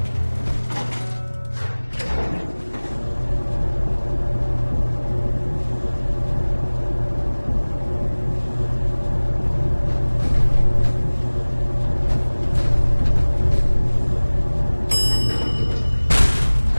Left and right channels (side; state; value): both; inverted; correlation -1.00